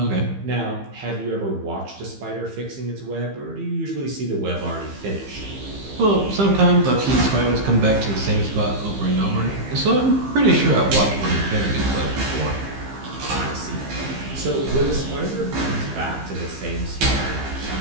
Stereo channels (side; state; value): left; late; 15 ms